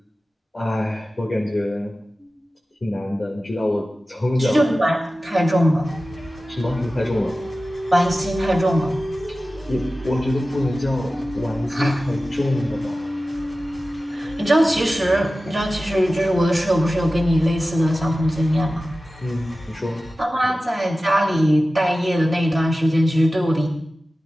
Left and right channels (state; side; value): normal; both; correlation 0.95